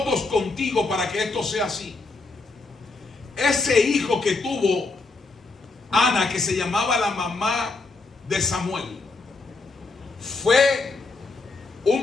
contigo para que esto sea así. Ese hijo que tuvo Ana, que se llamaba la mamá de Samuel, fue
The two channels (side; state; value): right; quieter; 3.7 dB